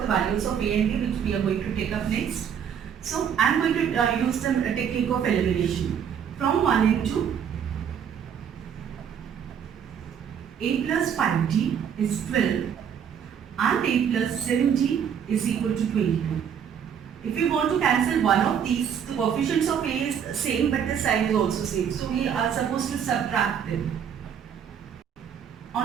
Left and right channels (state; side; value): quieter; left; 8.1 dB